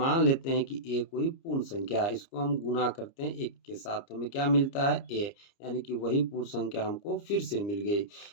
लेते हैं कि ए कोई पूर्ण संख्या है, इसको हम गुना करते हैं 1 के साथ तो हमें क्या मिलता है, ए, यानी कि वही पूर्ण संख्या हमको फिर से मिल गई,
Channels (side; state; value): right; late; 29 ms